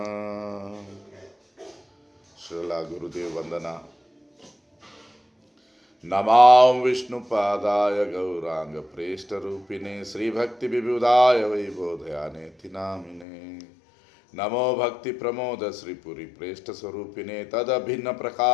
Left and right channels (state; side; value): drops out; right; at 13.2 s